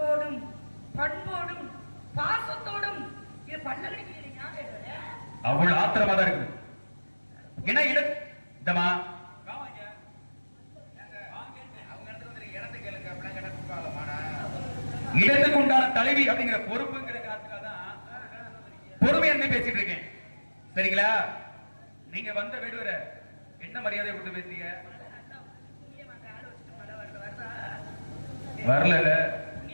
பண்போடும் பாசத்தோடும் இது பண்ண கிடைக்கிறீங்க. அவ்வளவு ஆத்திரமா தான் இருக்குது. என்ன இடம் இந்தமா இடத்துக்கு உண்டான தலைவி அப்படிங்கிற பொறுப்புங்கிற காரணத்துக்காக பொறுமை என்ன பேசிட்டு இருக்கேன். சரிங்களா? நீங்க வந்த வேடுவர என்ன மரியாதை கொடுத்து பேசுறீங்க? வரல.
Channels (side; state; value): both; inverted; correlation -1.00